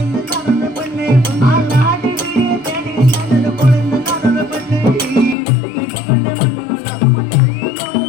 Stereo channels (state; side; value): drops out; right; at 5.4 s